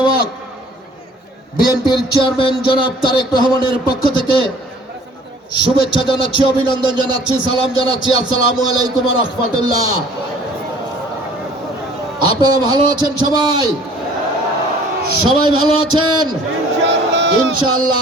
বিএনপির চেয়ারম্যান জনাব তারেক রহমানের পক্ষ থেকে শুভেচ্ছা জানাচ্ছি, অভিনন্দন জানাচ্ছি, সালাম জানাচ্ছি। আসসালামু আলাইকুম ওয়া রাহমাতুল্লাহ। আপনারা ভালো আছেন? সবাই ভালো আছেন?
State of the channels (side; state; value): both; normal; correlation 0.52